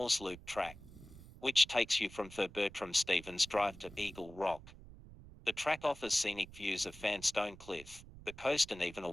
Loop track, which takes you from Sir Bertram Stevens Drive to Eagle Rock. The track offers scenic views of Fanstone Cliff, the coast and even a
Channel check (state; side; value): noise; right; rumble, 18 dB below the sound